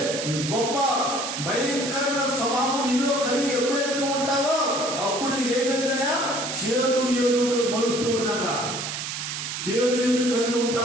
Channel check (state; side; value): noise; right; hiss, 5 dB below the sound